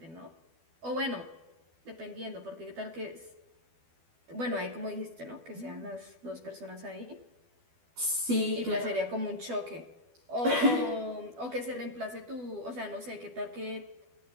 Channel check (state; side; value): late; left; 12 ms